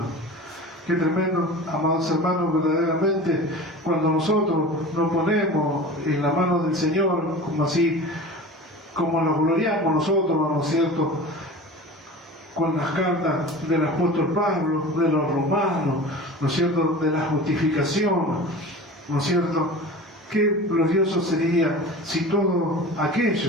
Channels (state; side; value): normal; both; correlation 0.36